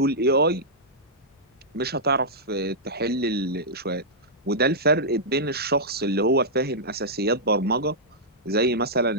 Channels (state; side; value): normal; both; correlation -0.11